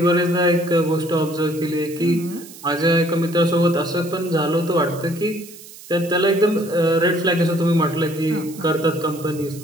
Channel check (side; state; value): right; noise; hiss, 18 dB below the sound